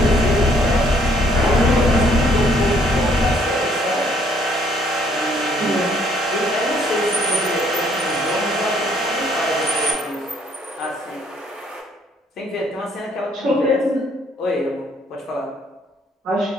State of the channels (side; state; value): both; normal; correlation 0.65